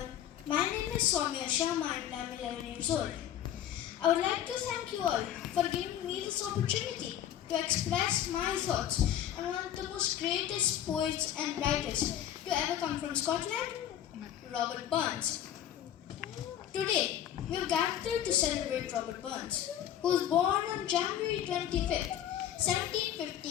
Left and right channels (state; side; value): quieter; right; 10.9 dB